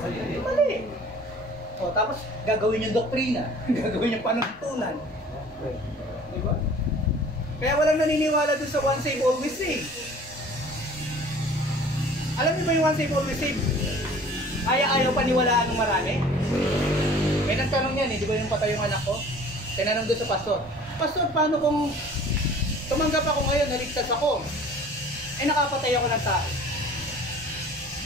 mali. O tapos gagawin yung doktrina, gagawin yung panuntunan. Diba? Kaya walang naniniwala dun sa one save, always save. Alam niyo ba yung one save, always save? Ayaw paniwalaan ng marami? May nagtanong yan di ba yung patay yung anak ko? Tinanong doon sa pastor, Pastor, paano kung tumanggap ako ngayon, naligtas ako, nakapatay ako ng tao?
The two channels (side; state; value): both; normal; correlation 0.48